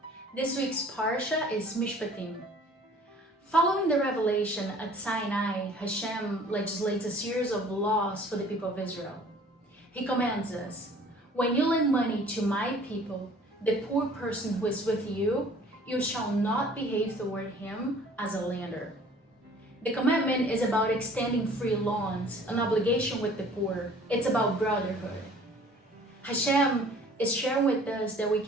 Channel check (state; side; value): normal; both; correlation 0.51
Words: This week's Parsha is MIshpatim. Following the revelation at Sinai, Hashem legislates a series of laws for the people of Israel. He commands us, when you lend money to my people, the poor person who is with you, you shall not behave toward him as a lender. The commandment is about extending free loans, an obligation with the poor. It's about brotherhood. Hashem is sharing with us that we